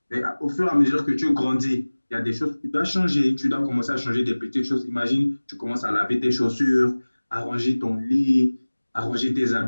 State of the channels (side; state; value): both; inverted; correlation -1.00